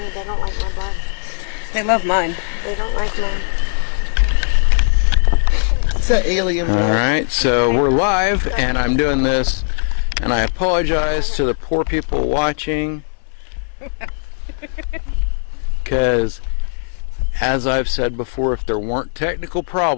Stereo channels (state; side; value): silent; right; digital silence